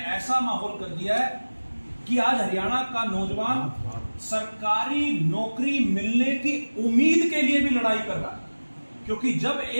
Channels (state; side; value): inverted; both; correlation -1.00